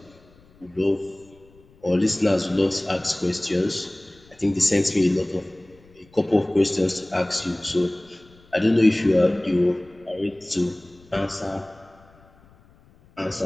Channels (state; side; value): noise; left; rumble, 28 dB below the sound